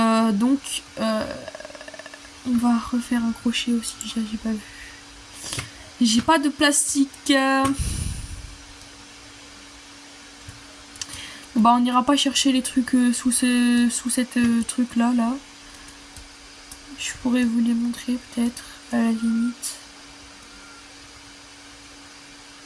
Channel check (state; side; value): identical; both; correlation 1.00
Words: On va refaire un crochet aussi. J'ai pas vu. J'ai pas de plastique. Bah on n'ira pas chercher les trucs sous cette truc là. Je pourrais vous les montrer peut-être à la limite.